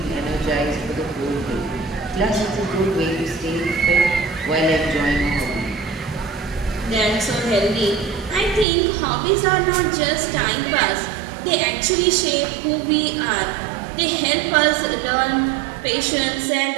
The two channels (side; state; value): left; drops out; at 8.7 s